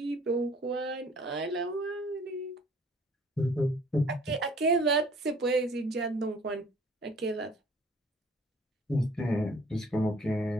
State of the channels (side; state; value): both; normal; correlation 0.54